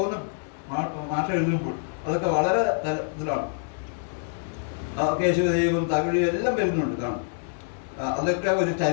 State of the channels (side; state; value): right; silent; digital silence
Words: മാഷ എഴുതുമ്പോൾ. അതൊക്കെ വളരെ ഇതിലാണ്. കേശവദേവും തകഴിയും എല്ലാം വരുന്നുണ്ട്. കാണും. അതൊക്കെ ഒരു